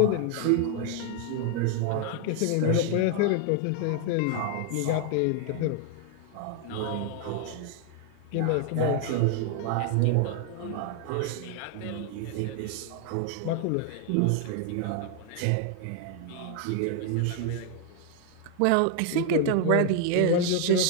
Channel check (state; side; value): different; both; correlation 0.00